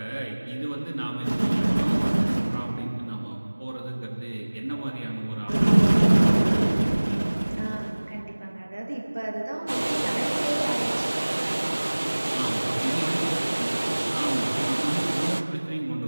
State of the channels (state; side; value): inverted; both; correlation -1.00